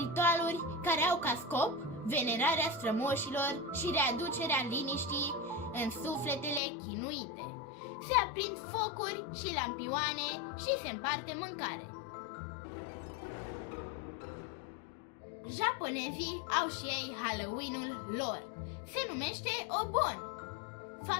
ritualuri care au ca scop venerarea strămoșilor și readucerea liniștii în sufletele chinuite. Se aprind focuri și lampioane și se împarte mâncare. Japonezii au și ei Halloween-ul lor. Se numește Obon.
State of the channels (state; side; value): drops out; right; at 6.6 s